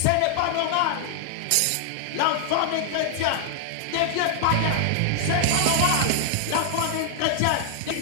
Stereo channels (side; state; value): both; different; correlation 0.00